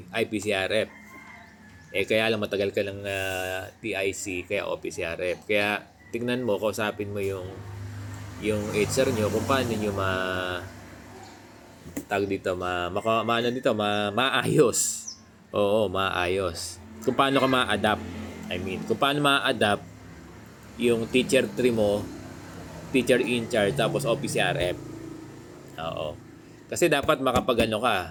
IPCRF. Kaya lang matagal ka ng TIC, kaya OPCRF. Kaya tingnan mo, kausapin mo yung HR nyo kung paano nyo maayos. Oo, maayos. Kung paano ka ma-adapt. Kung paano ma-adapt yung teacher 3 mo, teacher in charge, tapos OPCRF. Oo. Kasi dapat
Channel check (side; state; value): both; identical; correlation 1.00